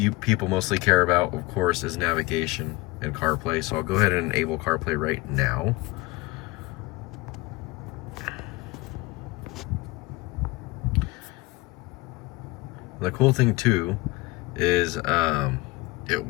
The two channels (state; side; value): quieter; right; 21.7 dB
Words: people mostly care about, of course, is navigation and CarPlay. So I'll go ahead and enable CarPlay right now. The cool thing too is it